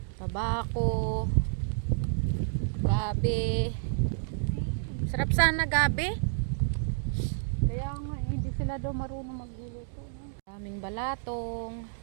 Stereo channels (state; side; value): silent; left; digital silence